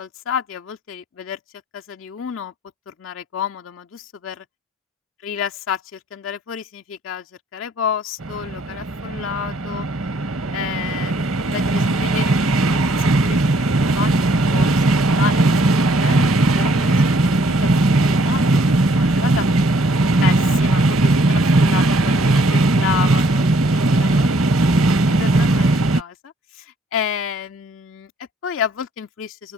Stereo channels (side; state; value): both; normal; correlation 0.65